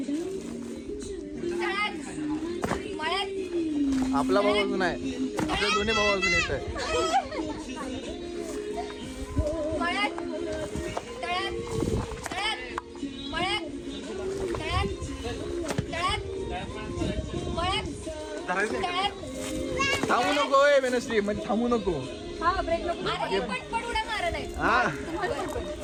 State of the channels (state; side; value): identical; both; correlation 1.00